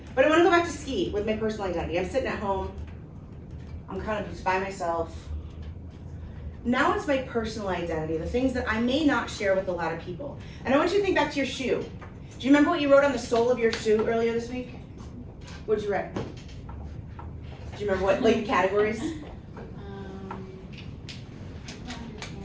But I want to go back to ski with my personal identity. I'm sitting at home. I'm kind of just by myself. Now it's my personal identity, the things that I may not share with a lot of people. And I want you to think back to your shoe. Do you remember what you wrote on the sole of your shoe earlier this week? What did you write? Do you remember what like categories?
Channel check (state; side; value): identical; both; correlation 1.00